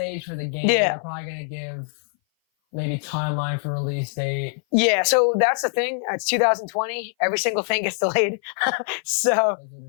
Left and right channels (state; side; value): silent; right; 58 dB below the other